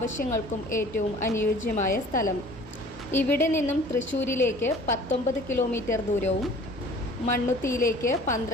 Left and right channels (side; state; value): both; normal; correlation 0.49